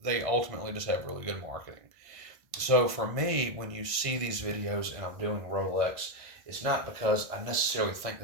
they ultimately just have really good marketing. So for me, when you see these videos and I'm doing Rolex, it's not because I necessarily think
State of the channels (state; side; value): late; left; 1.5 ms